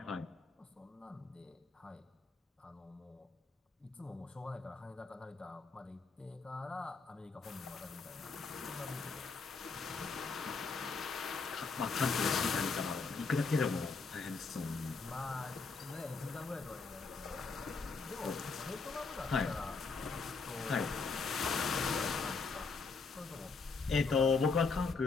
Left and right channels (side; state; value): right; quieter; 4.5 dB